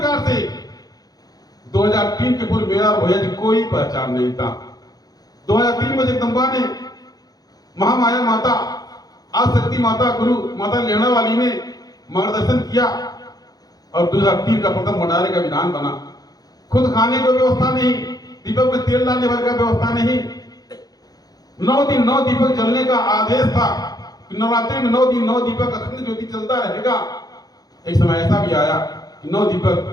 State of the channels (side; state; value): right; late; 0.19 ms